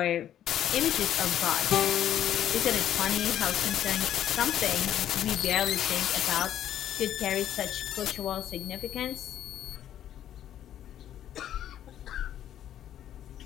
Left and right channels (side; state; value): right; quieter; 11.1 dB